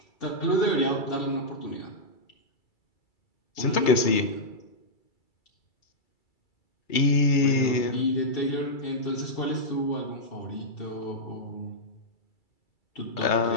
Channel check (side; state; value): right; late; 2.3 ms